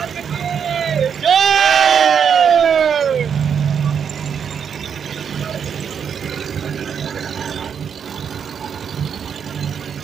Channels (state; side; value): quieter; left; 7.4 dB